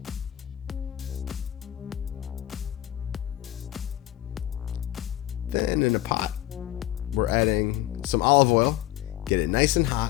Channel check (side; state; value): right; quieter; 14.0 dB